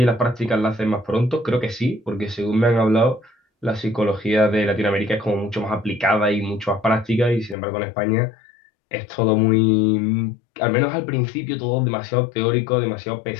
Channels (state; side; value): drops out; right; at 7.6 s